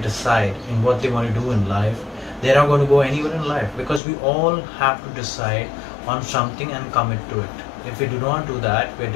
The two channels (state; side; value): drops out; right; at 4.0 s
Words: in what they want to do in life, they're not going to go anywhere in life because we all have to decide on something and commit to it. If we do not do that, we're